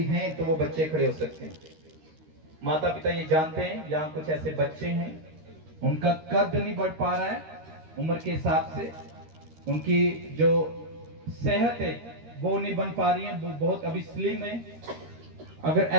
हैं तो वो बच्चे खड़े हो सकते हैं। माता पिता ये जानते हैं यहाँ कुछ ऐसे बच्चे हैं, उनका कद नहीं बढ़ पा रहा है उम्र के हिसाब से, उनकी जो सेहत है वो नहीं बन पा रही है, वो बहुत अभी स्लिम है। अगर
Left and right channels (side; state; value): left; late; 13 ms